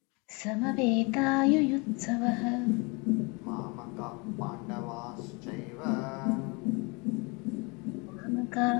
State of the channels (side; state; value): right; quieter; 29.3 dB